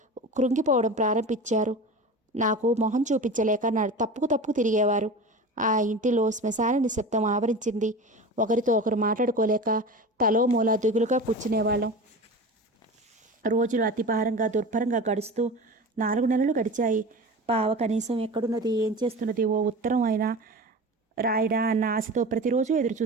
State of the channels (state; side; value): normal; both; correlation 0.32